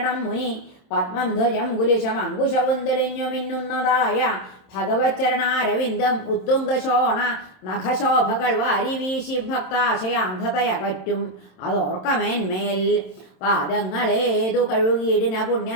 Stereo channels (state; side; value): late; right; 27 ms